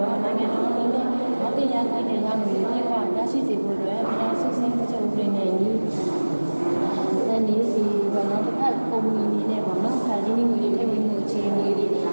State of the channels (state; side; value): inverted; both; correlation -1.00